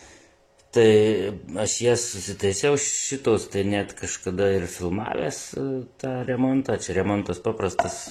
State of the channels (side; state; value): both; identical; correlation 1.00